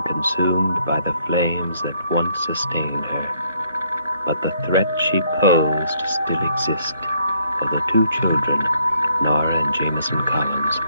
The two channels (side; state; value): both; inverted; correlation -0.68